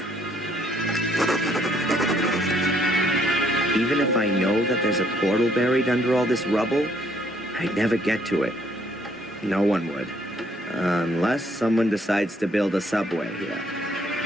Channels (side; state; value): both; normal; correlation 0.67